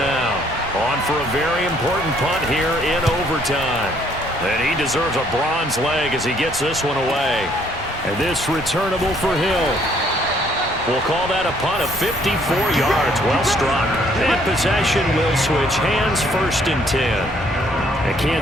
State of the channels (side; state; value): both; normal; correlation 0.65